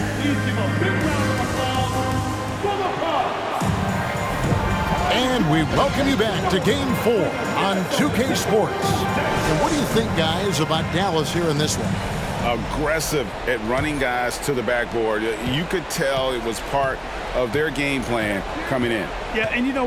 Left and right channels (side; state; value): both; identical; correlation 1.00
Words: And we welcome you back to Game 4 on 2K Sports. And what do you think, guys, about Dallas here in this one? Aggressive at running guys to the backboard. You could tell it was part of their game plan coming in. Yeah, and you know,